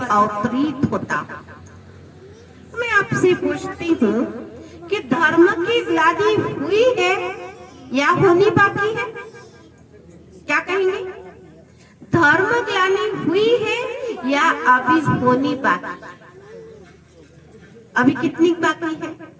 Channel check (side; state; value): both; identical; correlation 1.00